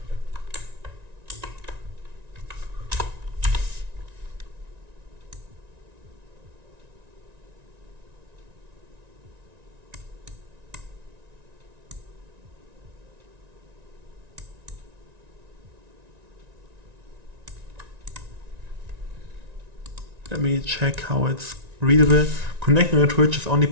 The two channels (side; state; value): left; late; 1.9 ms